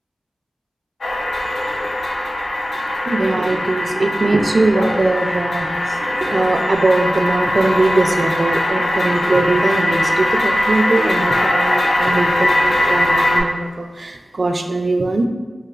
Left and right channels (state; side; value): normal; both; correlation 0.95